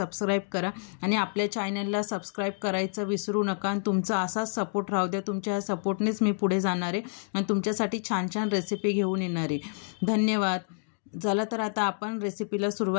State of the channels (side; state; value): right; silent; 59 dB below the other